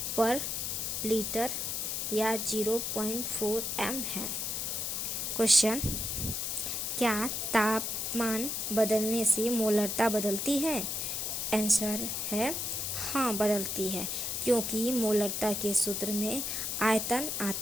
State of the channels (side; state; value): left; noise; hiss, 2 dB below the sound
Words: पर लीटर या 0.4 M है। क्वेश्चन, क्या ताप तापमान बदलने से मोलरता बदलती है? आंसर है हाँ, बदलती है, क्योंकि मोलरता के सूत्र में आयतन